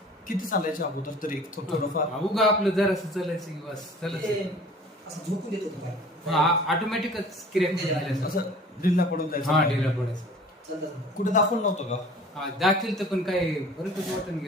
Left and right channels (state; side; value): normal; both; correlation 0.46